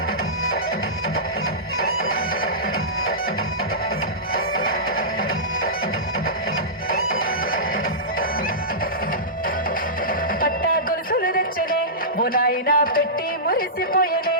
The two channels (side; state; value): both; normal; correlation -0.17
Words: పట్టా గొలుసులు తెచ్చనే ఓ నాయన పెట్టి మురిసిపోయనే